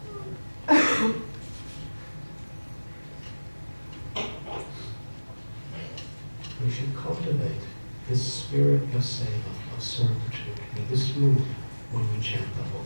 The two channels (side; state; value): both; inverted; correlation -1.00